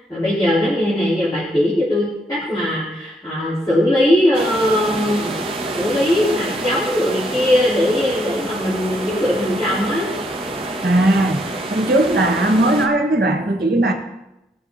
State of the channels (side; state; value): both; normal; correlation 0.73